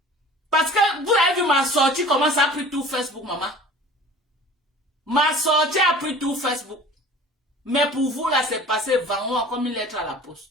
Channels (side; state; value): both; normal; correlation 0.43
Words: Parce que vous avez vu ma sortie. Comment ça a pris tout Facebook, maman. Ma sortie a pris tout Facebook. Mais pour vous, là, c'est passé vraiment comme une lettre à la